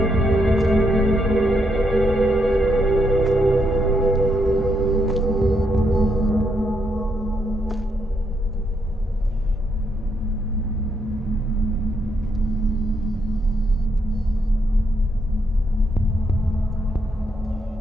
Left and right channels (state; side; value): normal; both; correlation 0.77